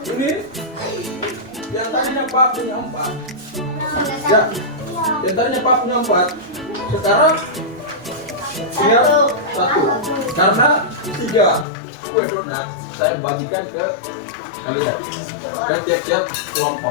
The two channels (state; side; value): drops out; right; at 11.7 s